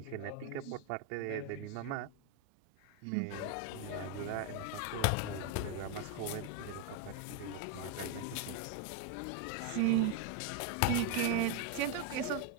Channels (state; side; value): different; both; correlation 0.01